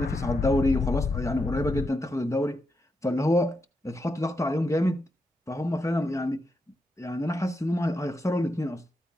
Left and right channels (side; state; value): both; normal; correlation 0.84